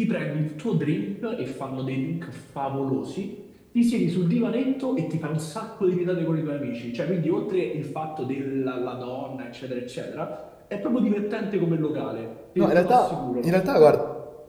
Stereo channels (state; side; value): identical; both; correlation 1.00